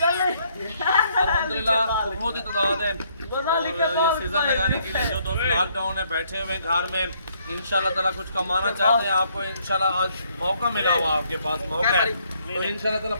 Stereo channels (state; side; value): inverted; both; correlation -0.69